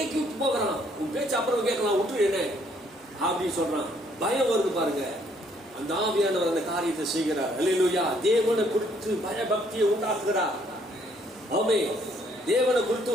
போகிறான். உன் பேச்சு அப்புறம் கேட்கலாம், விட்டுரு என்ன அப்படின்னு சொல்றான். பயம் வருது பாருங்க. அந்த ஆவியானவர் அந்த காரியத்தை செய்கிறார். அல்லேலூயா. தேவனை குறித்து பயபக்தியை உண்டாக்குகிறார். ஆமே, தேவனை குறித்து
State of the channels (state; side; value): normal; both; correlation 0.66